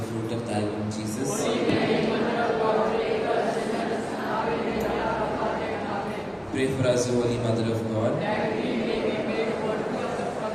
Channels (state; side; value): identical; both; correlation 1.00